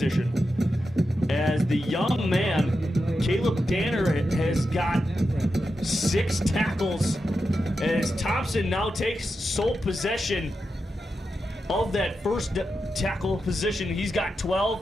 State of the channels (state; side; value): normal; both; correlation 0.88